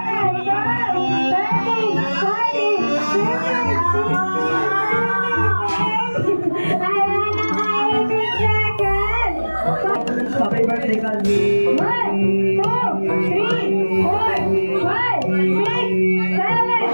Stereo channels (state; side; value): inverted; both; correlation -1.00